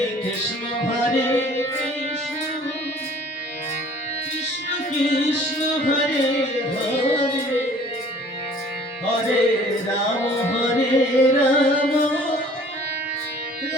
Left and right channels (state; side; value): normal; both; correlation 0.52